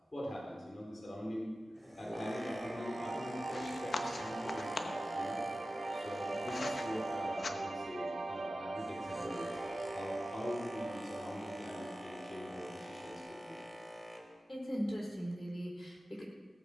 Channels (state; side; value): normal; both; correlation 0.95